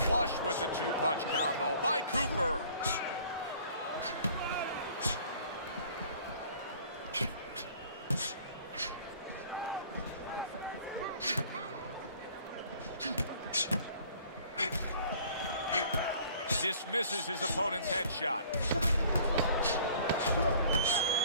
with the two-punch combo by Cooper. Dismisses his opponent's headshot.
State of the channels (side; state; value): both; inverted; correlation -0.52